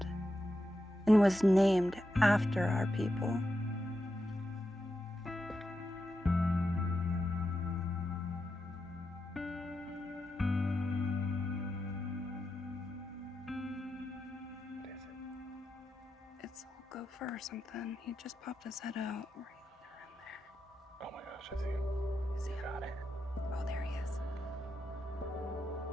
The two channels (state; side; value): normal; both; correlation 0.87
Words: and was named after our people. It's a gopher or something. He just popped his head out right around there. Oh my gosh, I see him. Is he? Got it. Oh, there he is.